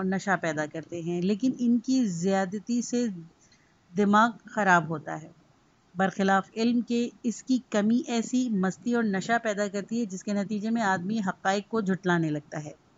نشہ پیدا کرتے ہیں، لیکن ان کی زیادتی سے دماغ خراب ہوتا ہے۔ برخلاف علم کے اس کی کمی ایسی مستی اور نشہ پیدا کرتی ہے جس کے نتیجے میں آدمی حقائق کو جھٹلانے لگتا ہے۔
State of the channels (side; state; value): both; identical; correlation 1.00